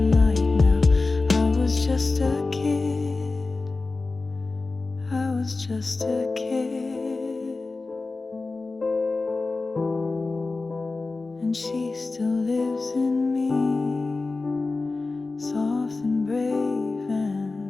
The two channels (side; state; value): right; quieter; 3.6 dB